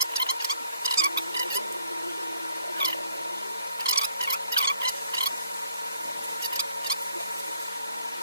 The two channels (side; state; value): both; inverted; correlation -0.64